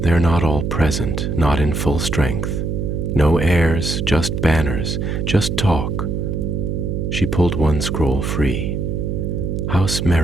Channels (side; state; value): right; noise; hum, 1 dB below the sound